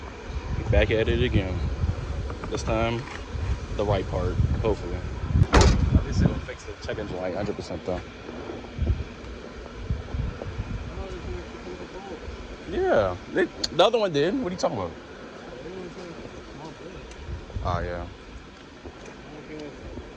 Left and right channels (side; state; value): both; identical; correlation 1.00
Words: Back at it again. This time, the right part, hopefully. Obviously, we'll fix the check engine light 100% though. Yeah, the other one did. What are you talking about? Oh, yeah.